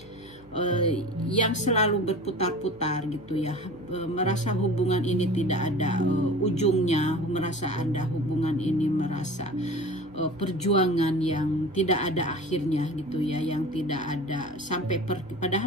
yang selalu berputar-putar gitu ya, merasa hubungan ini tidak ada ujungnya, merasa Anda hubungan ini merasa perjuangan yang tidak ada akhirnya gitu ya, yang tidak ada sampai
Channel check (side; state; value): both; normal; correlation 0.38